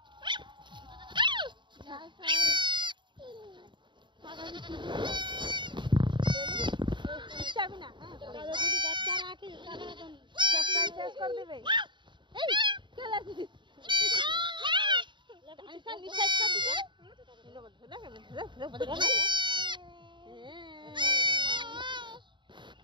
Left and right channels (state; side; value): late; left; 0.23 ms